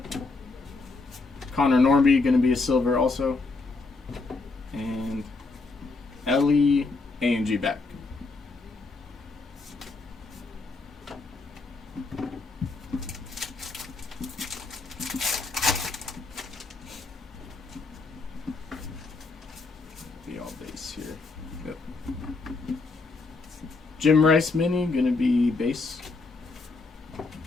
Connor Norby going to be a silver also. And Ellie A&G back. Be all base here. Yep. Jim Rice mini going to be base.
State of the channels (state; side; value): quieter; right; 3.8 dB